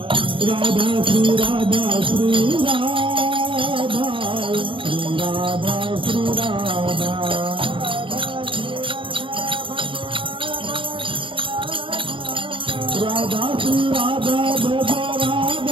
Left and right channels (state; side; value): late; left; 0.25 ms